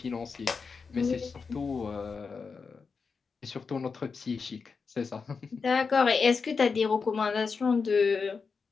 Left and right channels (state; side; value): quieter; right; 5.1 dB